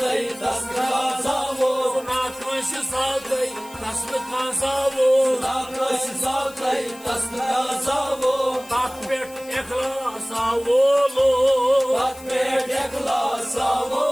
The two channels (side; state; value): left; noise; hiss, 20 dB below the sound